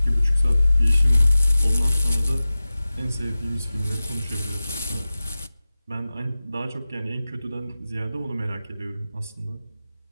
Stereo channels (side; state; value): both; inverted; correlation -0.96